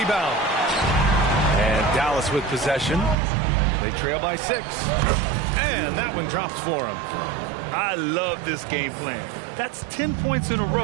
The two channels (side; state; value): left; drops out; at 3.2 s